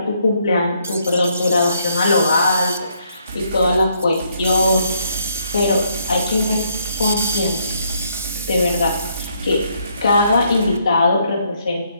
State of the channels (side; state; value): both; inverted; correlation -0.72